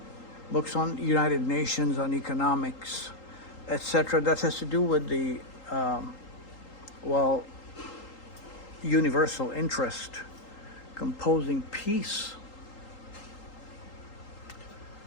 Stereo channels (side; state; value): right; late; 3.8 ms